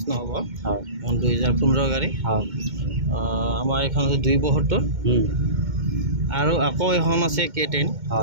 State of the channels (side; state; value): left; late; 2.1 ms